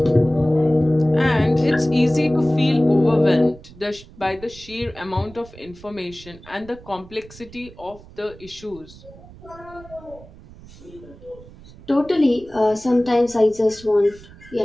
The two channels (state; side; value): noise; right; rumble, 20 dB below the sound